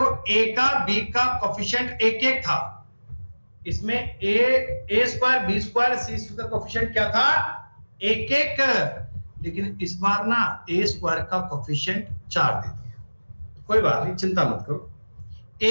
ए का बी का कोफिशिएंट 1 था। इसमें ए स्क्वायर बी स्क्वायर सी स्क्वायर का कोफिशिएंट क्या था? 1 लेकिन इस बार ना ए स्क्वायर का कोफिशिएंट 4 दे दिया। कोई बात नहीं, चिंता मत करो।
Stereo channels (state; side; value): inverted; both; correlation -1.00